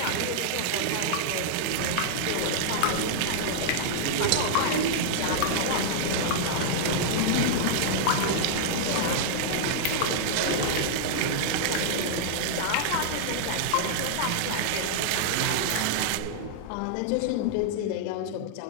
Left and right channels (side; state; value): both; different; correlation -0.01